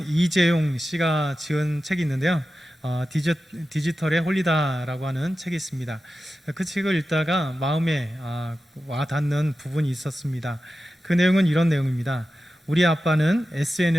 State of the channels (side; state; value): both; normal; correlation 0.93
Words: 이재용 씨가 지은 책이 있는데요. 디지털의 홀리다라고 하는 책이 있습니다. 그 책을 읽다가 마음에 와닿는 부분이 있었습니다. 그 내용은 이런 내용입니다. 우리 아빠는